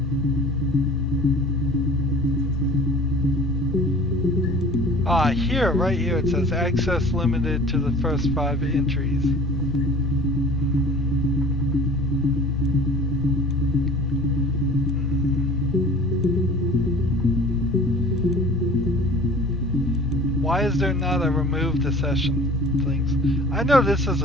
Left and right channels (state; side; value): normal; both; correlation 0.44